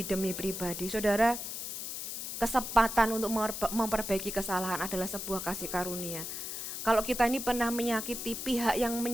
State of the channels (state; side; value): noise; left; hiss, 6 dB below the sound